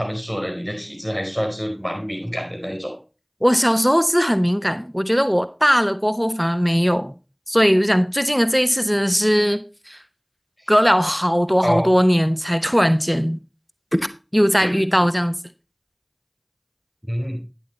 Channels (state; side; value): identical; both; correlation 1.00